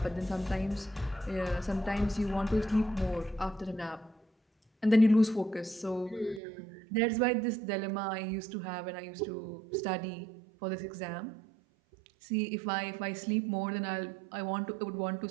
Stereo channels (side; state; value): left; drops out; at 6.4 s